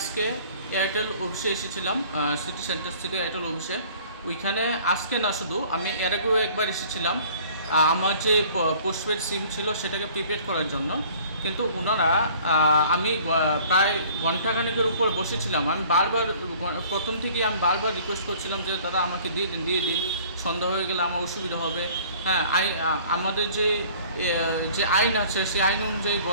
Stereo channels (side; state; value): both; inverted; correlation -0.52